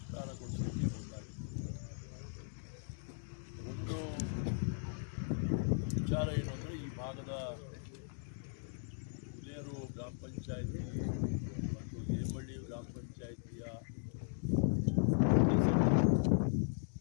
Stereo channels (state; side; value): silent; right; digital silence